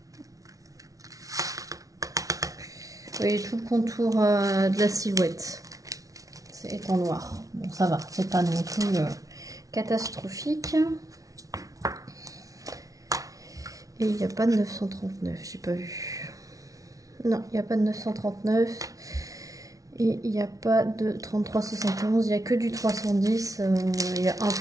voyez tout le contour de la silhouette. C'est en noir. Bon, ça va, c'est pas non plus catastrophique. Et il n'y a pas de 939, j'ai pas vu. Non, il n'y a pas de 939. Et il n'y a pas de 33,71, il n'y a que du 310. Il y a un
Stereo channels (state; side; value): late; left; 0.17 ms